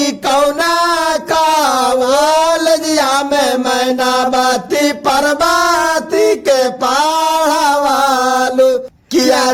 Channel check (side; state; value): both; identical; correlation 1.00